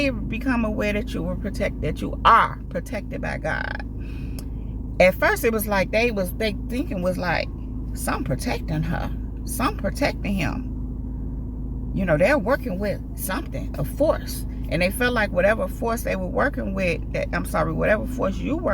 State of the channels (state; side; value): identical; both; correlation 1.00